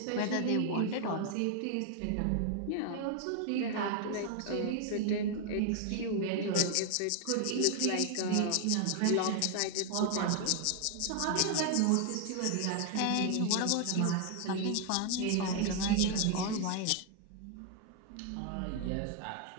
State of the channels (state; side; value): different; both; correlation 0.00